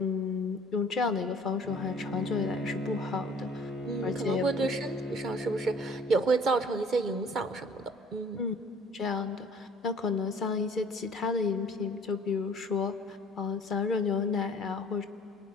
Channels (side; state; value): both; normal; correlation 0.53